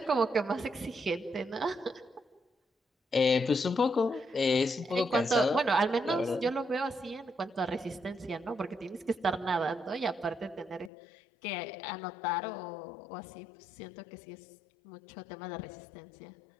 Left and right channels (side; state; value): right; drops out; at 10.9 s